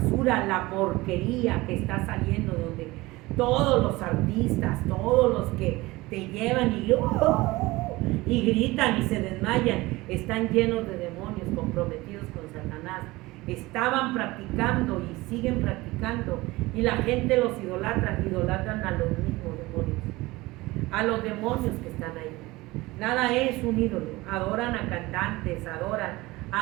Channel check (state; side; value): quieter; left; 20.6 dB